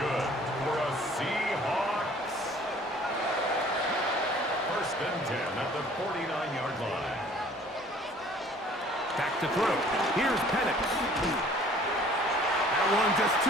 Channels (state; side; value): normal; both; correlation 0.53